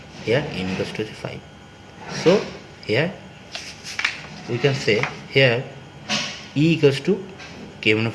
Here n equals to 5. So here we can say here E equals to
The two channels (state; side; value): identical; both; correlation 1.00